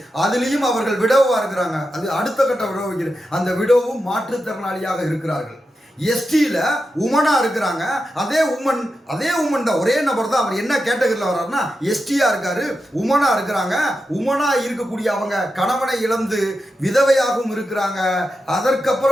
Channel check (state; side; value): normal; both; correlation 0.89